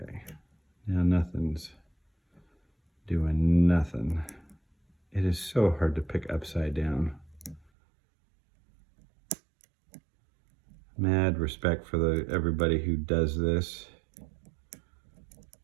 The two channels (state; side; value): drops out; left; at 7.7 s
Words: now nothing's doing nothing. It is so hard to pick upside down. Mad respect for everybody who does this.